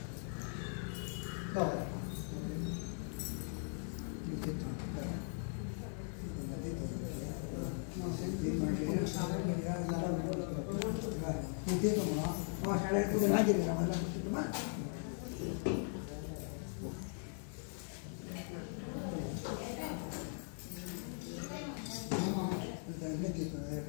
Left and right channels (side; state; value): right; silent; 51 dB below the other